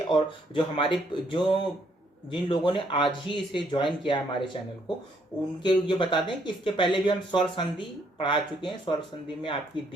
जो हमारे जिन लोगों ने आज ही इसे ज्वाइन किया हमारे चैनल को, उनके ये बता दें कि इसके पहले भी हम स्वर संधि पढ़ा चुके हैं। स्वर संधि में आपकी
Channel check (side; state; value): both; normal; correlation 0.70